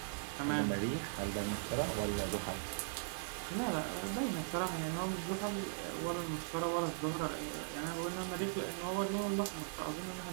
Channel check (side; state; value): left; silent; 52 dB below the other